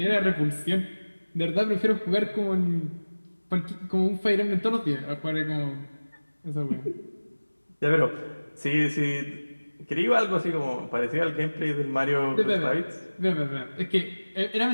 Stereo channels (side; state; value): both; inverted; correlation -1.00